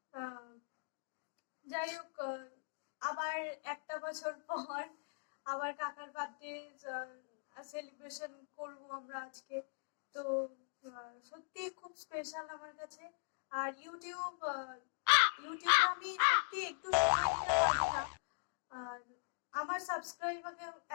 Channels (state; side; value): silent; right; digital silence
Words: যাই হোক, আবার একটা বছর পর আবার কাকার বার্থডে সেলিব্রেশন করবো আমরা আজকে। তো সত্যি খুব স্পেশাল আমার কাছে। আর ইউটিউবে আমি সত্যি একটু সময় দিতে পারি না, আর আমার সাবস্ক্রাইবারকে